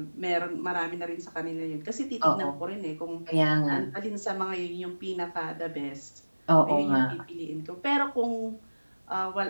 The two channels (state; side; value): inverted; both; correlation -1.00